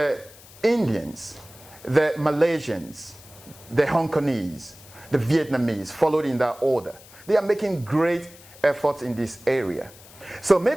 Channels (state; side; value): noise; left; hiss, 21 dB below the sound